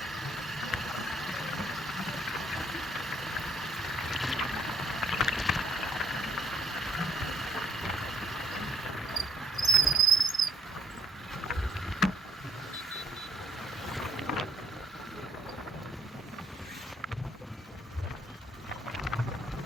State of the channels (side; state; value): both; normal; correlation 0.68